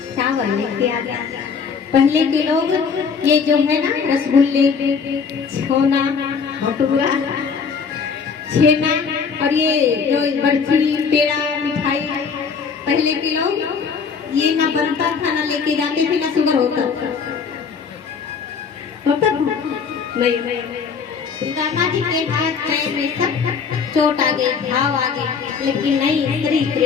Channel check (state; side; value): quieter; right; 5.9 dB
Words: चावल लेके आ गया। पहले के लोग ये जो है ना रसगुल्ले, छोना, भटूरा, छेना और ये जो बर्फी, पेड़ा, मिठाई, पहले के लोग ये ना बनता था, ना लेके जाते थे, ना शुगर होता नहीं। सुदामा जी के हाथ पैर में सब चोट आ गई, घाव आ गए, लेकिन नहीं, श्री